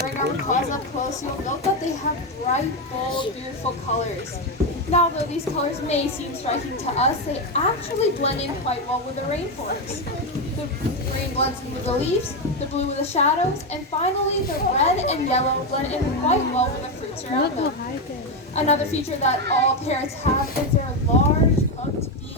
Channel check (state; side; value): normal; both; correlation 0.09